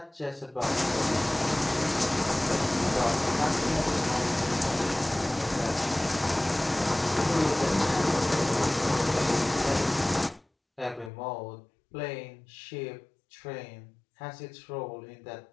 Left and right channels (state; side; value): drops out; right; at 11.1 s